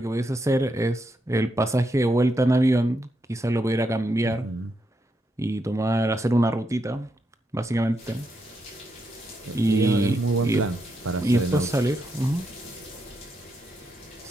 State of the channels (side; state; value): both; normal; correlation 0.81